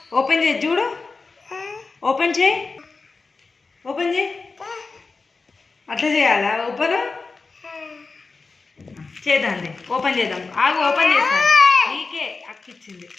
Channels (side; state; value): right; quieter; 4.1 dB